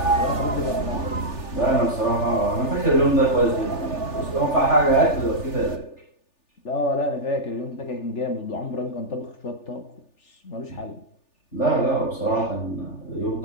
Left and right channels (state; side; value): late; right; 3.4 ms